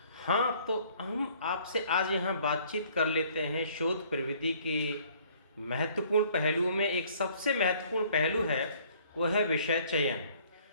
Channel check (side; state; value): both; inverted; correlation -0.58